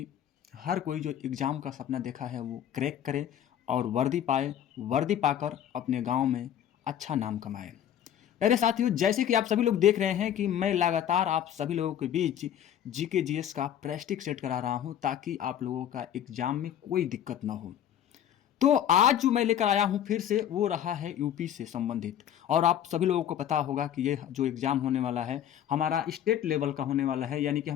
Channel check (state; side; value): quieter; right; 10.3 dB